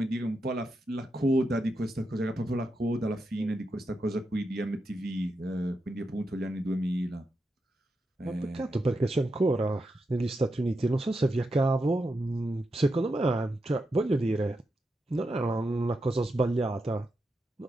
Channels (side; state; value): both; normal; correlation 0.86